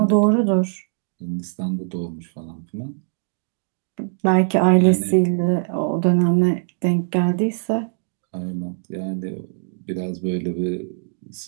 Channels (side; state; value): left; silent; digital silence